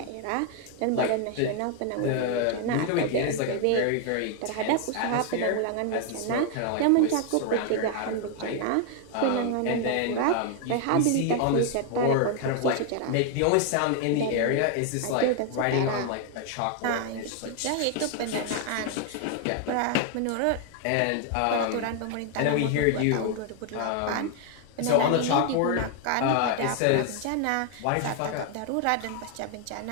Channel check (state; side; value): different; both; correlation 0.00